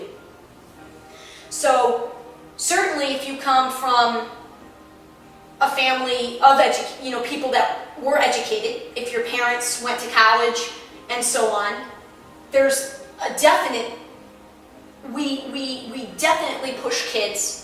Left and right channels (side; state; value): both; identical; correlation 1.00